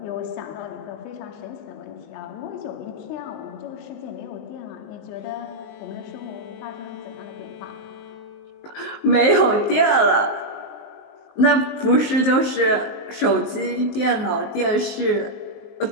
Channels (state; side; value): late; right; 19 ms